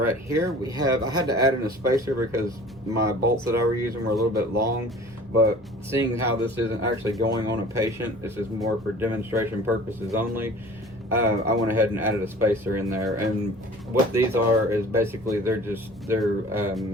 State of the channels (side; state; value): both; normal; correlation 0.45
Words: here. We have, I had to add in a spacer because my bolts that I were using were a little bit long, but seeing how this isn't actually going on a patient, this is more for demonstration purposes only, I went ahead and added a spacer in there. And what these are is basically they're